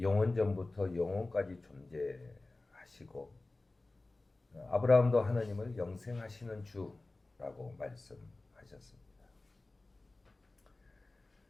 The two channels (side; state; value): right; quieter; 3.1 dB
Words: 영원까지 존재하시고 아브라함도 하나님을 영생하시는 주라고 말씀하셨습니다.